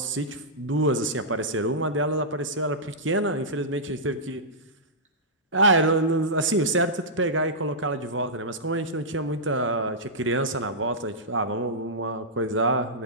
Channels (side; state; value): both; normal; correlation -0.13